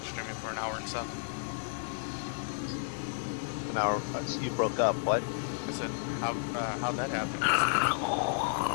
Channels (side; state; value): right; silent; digital silence